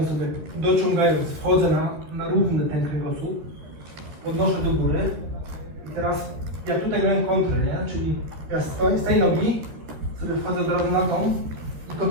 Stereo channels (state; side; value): late; left; 13 ms